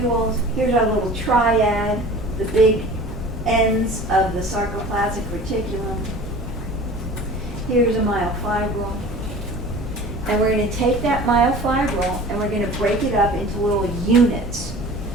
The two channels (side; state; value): both; normal; correlation 0.41